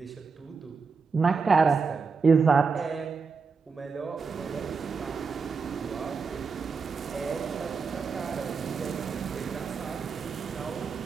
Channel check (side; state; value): left; quieter; 5.1 dB